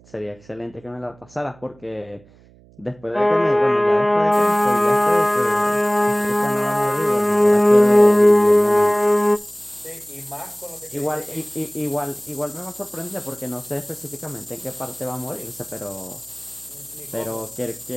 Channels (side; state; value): right; noise; hum, 27 dB below the sound